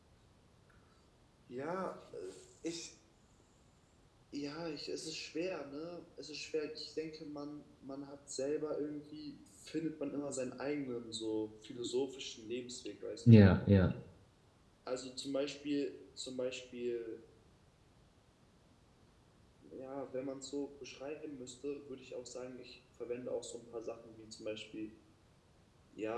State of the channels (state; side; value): identical; both; correlation 1.00